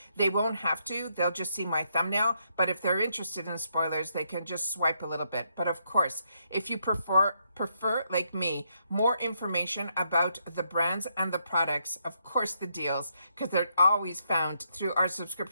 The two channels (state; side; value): inverted; both; correlation -0.77